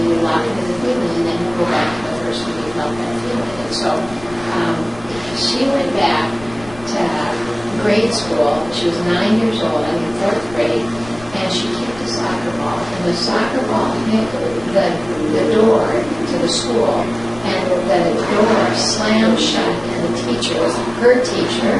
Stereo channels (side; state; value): left; noise; rumble, 19 dB below the sound